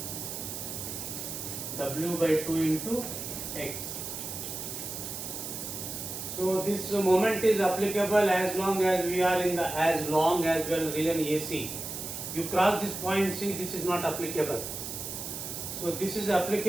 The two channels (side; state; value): right; noise; hiss, 6 dB below the sound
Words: W by 2 into x. So this moment is applicable as long as we are in the as long as we are in region AC. You cross this point C, this is not applicable. So this is